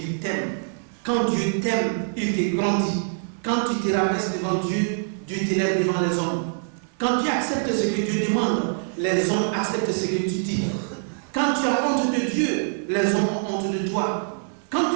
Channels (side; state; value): left; silent; 59 dB below the other